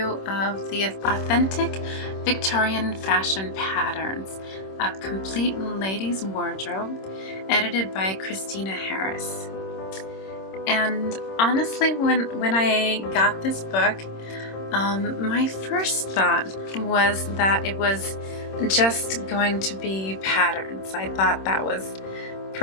of the Authentic Victorian Fashion Patterns, a complete ladies wardrobe, edited by Kristina Harris. And honestly, when I got this book, my first thought was that it was just going to be patterns. I thought that was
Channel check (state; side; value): late; right; 26 ms